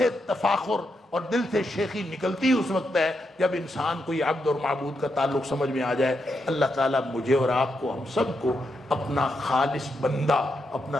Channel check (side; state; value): both; normal; correlation 0.83